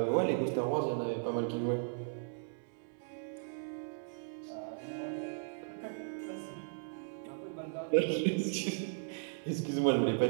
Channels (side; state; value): left; silent; digital silence